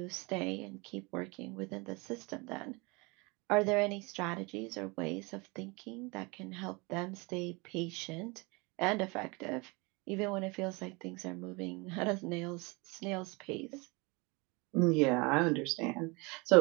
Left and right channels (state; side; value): quieter; left; 27.4 dB